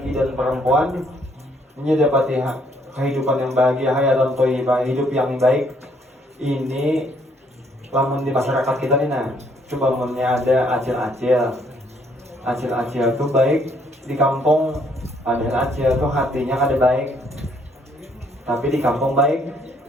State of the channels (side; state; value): both; normal; correlation 0.67